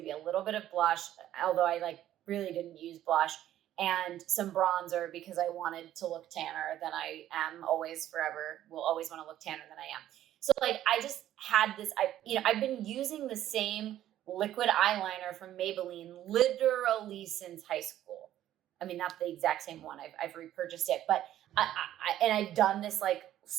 a little bit of blush, although I like really didn't use blush, and some bronzer because I wanted to look tanner than I am always forever. Will always want to look tanner than I am. So like I just had this, I've been using the same liquid eyeliner from Maybelline literally since high school. I mean, not the exact same one. I've repurchased it, but I've done this like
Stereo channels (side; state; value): left; quieter; 12.5 dB